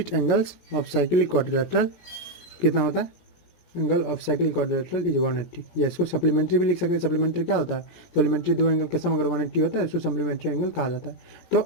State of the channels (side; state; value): right; late; 17 ms